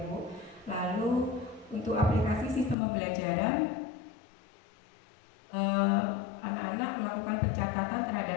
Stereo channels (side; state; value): right; drops out; at 2.8 s